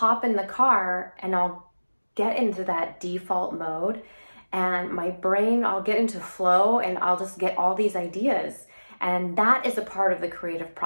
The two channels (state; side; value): inverted; both; correlation -1.00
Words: in the car and I'll get into that default mode, and my brain, I'll get into flow and I'll just get all these ideas. And that is a part of the creative